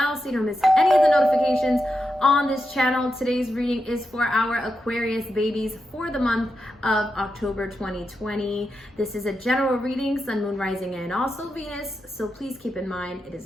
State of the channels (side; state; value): both; normal; correlation 0.87